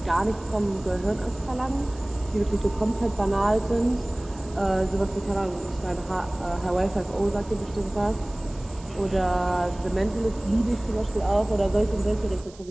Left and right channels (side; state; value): right; noise; hiss, 23 dB below the sound